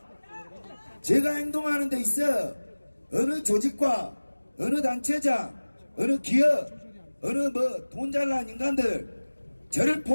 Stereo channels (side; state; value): both; inverted; correlation -1.00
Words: 제가 행동하는 데 있어 어느 조직과 어느 단체장, 어느 기업, 어느 돈 잘난 인간들 저를